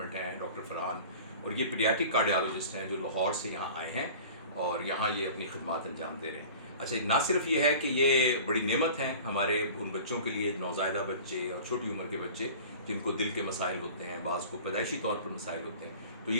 हैं, डॉक्टर फरहान, और ये पीडियाट्रिक कार्डियोलॉजिस्ट हैं जो लाहौर से यहाँ आए हैं और यहाँ ये अपनी खिदमत अंजाम दे रहे हैं। अच्छा, ना सिर्फ ये है कि ये बड़ी नेमत हैं हमारे उन बच्चों के लिए, नौज़ायदा बच्चे और छोटी उम्र के बच्चे जिनको दिल के मसाइल होते हैं, बाज़ को पैदाइशी तौर पर मसाइल होते हैं, तो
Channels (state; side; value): inverted; both; correlation -0.41